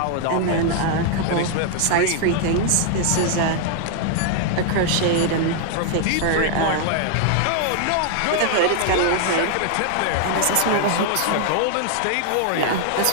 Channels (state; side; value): different; both; correlation 0.00